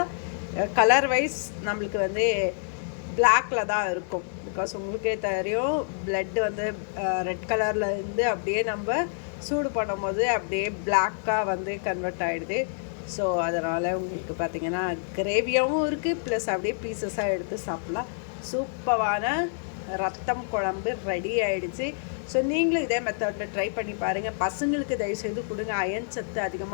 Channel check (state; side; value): silent; right; digital silence